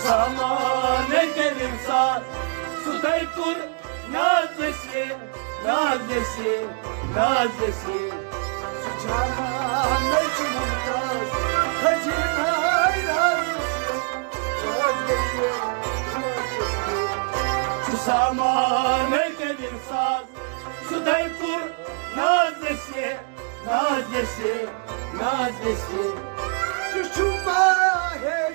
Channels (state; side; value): quieter; left; 39.7 dB